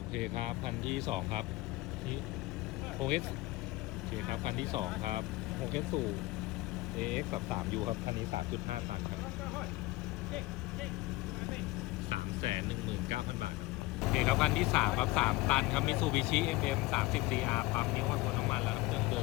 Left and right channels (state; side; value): quieter; right; 20.6 dB